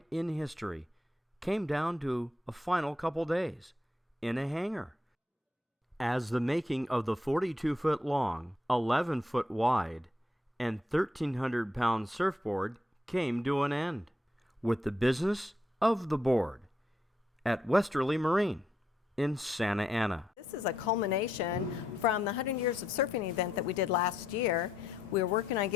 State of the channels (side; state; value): both; normal; correlation 0.77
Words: in history came down to a final couple days in a hangar. As the making of the 42-foot long, 11-foot wide, and 1,300-pound surfboard came to an end, with the business of the board at Westerly Marine in Santa Ana. This is a culmination from the 100 Years of Surfing event that we did last year. We were working on